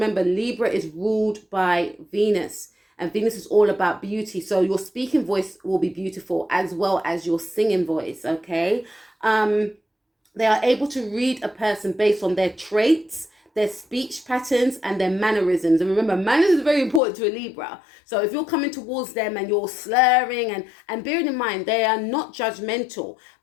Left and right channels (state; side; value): drops out; right; at 17.0 s